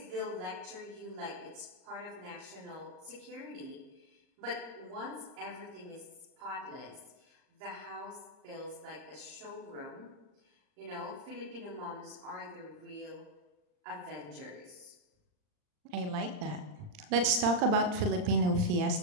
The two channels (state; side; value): late; left; 39 ms